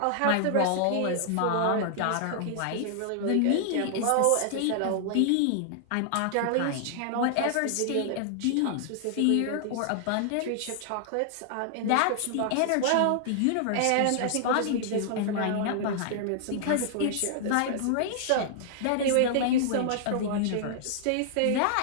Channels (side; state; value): both; different; correlation -0.01